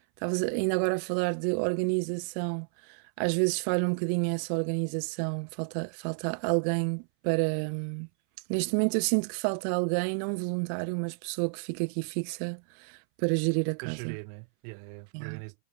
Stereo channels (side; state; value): left; silent; 58 dB below the other